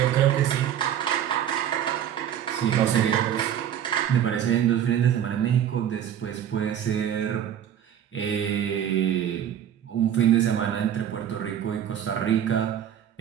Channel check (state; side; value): quieter; left; 9.9 dB